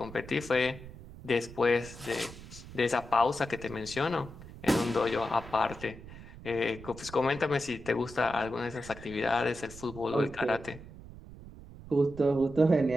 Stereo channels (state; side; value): noise; right; rumble, 16 dB below the sound